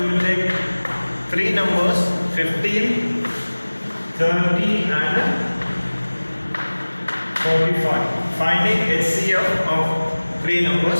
will take three numbers 15, 30 and 45. Finding HCF of three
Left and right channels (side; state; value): both; inverted; correlation -1.00